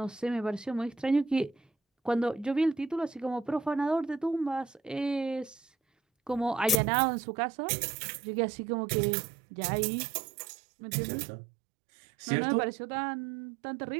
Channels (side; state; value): left; drops out; at 6.8 s